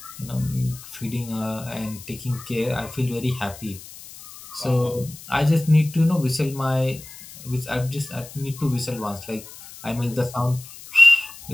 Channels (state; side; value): noise; left; hiss, 16 dB below the sound